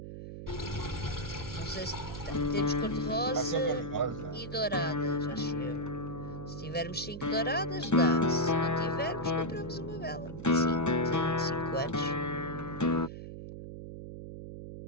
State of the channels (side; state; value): right; noise; hum, 10 dB below the sound